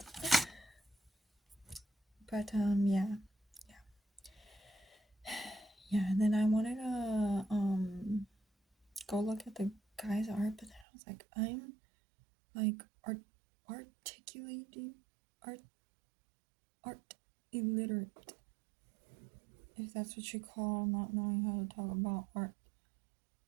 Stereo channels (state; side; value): drops out; left; at 10.9 s